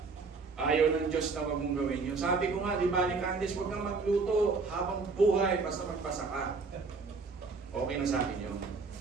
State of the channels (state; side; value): quieter; left; 4.4 dB